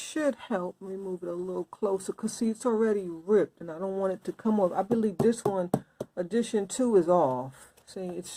help. Let me move it a little closer because see, it's already ripped and I don't want it to come off. I believe this one, edition 2, is off. See, it's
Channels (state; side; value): identical; both; correlation 1.00